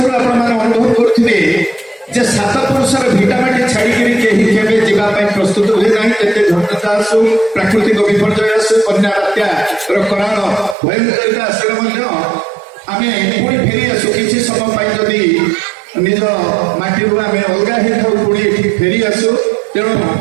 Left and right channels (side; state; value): left; drops out; at 10.8 s